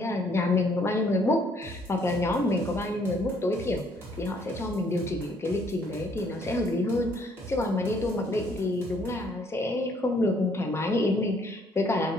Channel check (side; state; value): both; normal; correlation 0.65